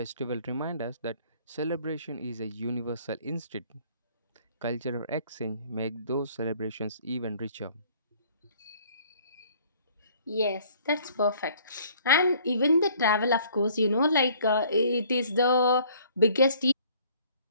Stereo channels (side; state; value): both; inverted; correlation -0.57